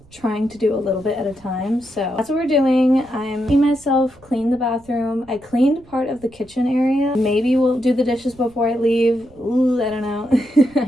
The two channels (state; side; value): noise; right; rumble, 27 dB below the sound